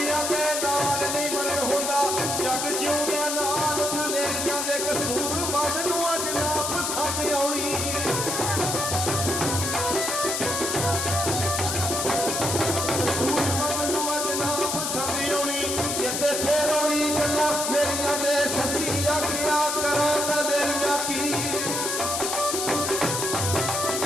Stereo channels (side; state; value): left; noise; hiss, 1 dB below the sound